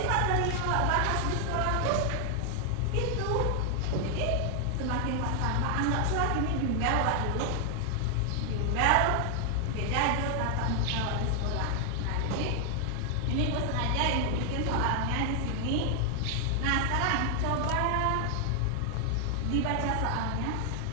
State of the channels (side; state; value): both; different; correlation 0.00